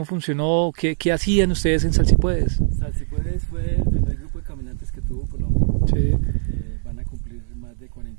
funcionó, qué hacían ustedes en Salsipuedes. Salsipuedes fue el primer grupo de caminantes que tuvo Colombia. Sí. Van a cumplir más de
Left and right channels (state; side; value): silent; left; digital silence